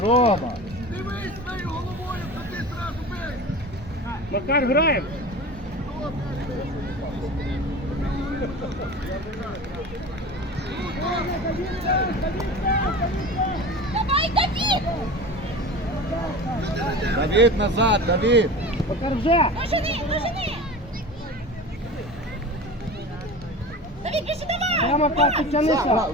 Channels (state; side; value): normal; both; correlation 0.33